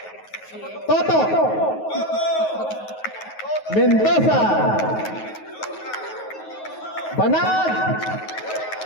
Toto, Mendoza, Banag,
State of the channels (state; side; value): late; right; 9.4 ms